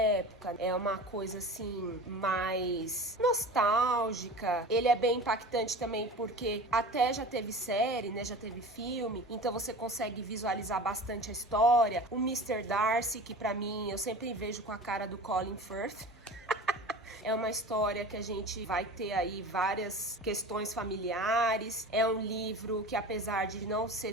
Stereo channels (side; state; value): both; normal; correlation 0.35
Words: é uma coisa assim, mais nostálgica. Ele é bem impactante também porque até já teve série, né? Já teve filme, então você consegue visualizar bastante a história. O Mr. Darcy, que pra mim, eu sempre vejo com a cara do Colin Firth. É uma história que a gente vai ter aí várias questões familiares. É um livro que, apesar de não